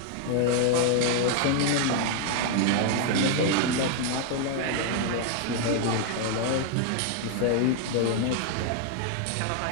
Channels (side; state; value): both; different; correlation 0.00